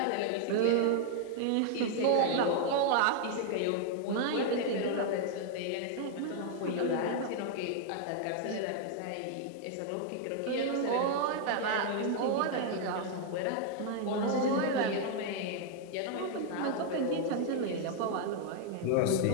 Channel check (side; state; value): both; different; correlation 0.00